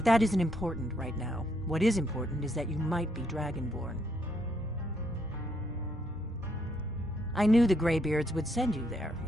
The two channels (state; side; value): noise; right; hum, 19 dB below the sound